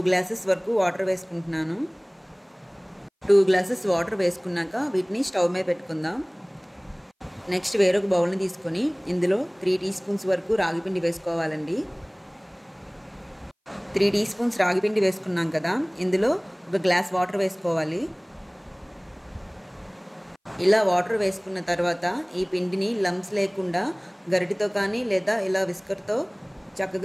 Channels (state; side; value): identical; both; correlation 1.00